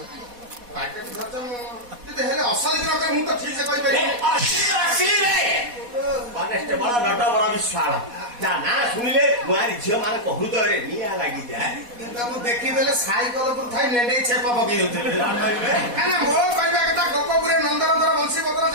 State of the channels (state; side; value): late; left; 4.1 ms